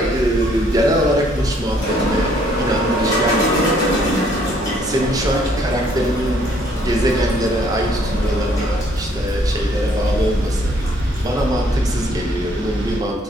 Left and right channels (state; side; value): normal; both; correlation 0.64